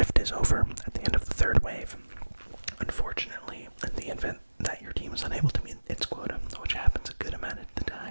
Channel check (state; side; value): inverted; both; correlation -1.00